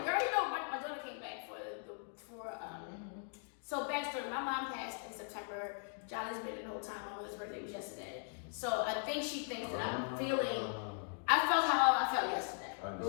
girl, my daughter came back so backstory, my mom passed in September. Jahli's been the whole time. My mother's birthday was yesterday. So I think she thinks that I'm feeling, I felt how I felt yesterday. I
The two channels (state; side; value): silent; right; 52 dB below the other